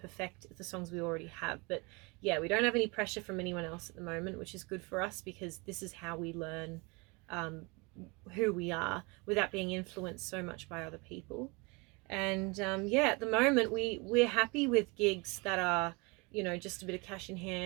perfect the songs we already have. But yeah, we don't have any pressure from anyone else at the moment, which is good for us because this is how we learn who we are without being influenced so much by other people. And at the moment we're happy with gigs that are, you know, just a bit of cash in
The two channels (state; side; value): quieter; left; 28.1 dB